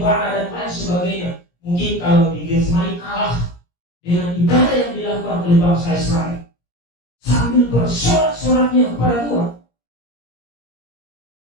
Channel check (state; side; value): late; right; 17 ms